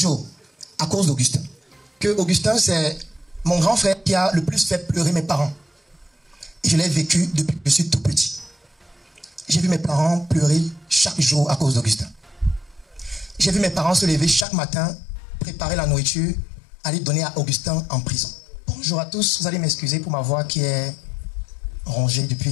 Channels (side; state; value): right; drops out; at 14.5 s